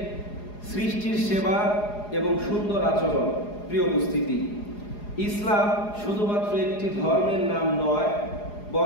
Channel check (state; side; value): late; right; 4.8 ms